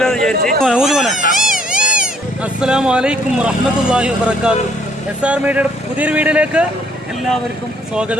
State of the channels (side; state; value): both; normal; correlation 0.64